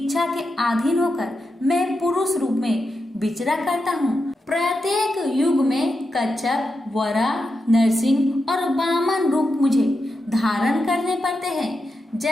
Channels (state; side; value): normal; both; correlation 0.87